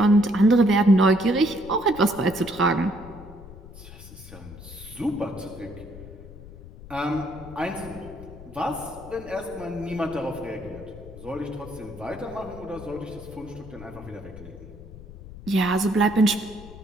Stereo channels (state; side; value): noise; left; rumble, 16 dB below the sound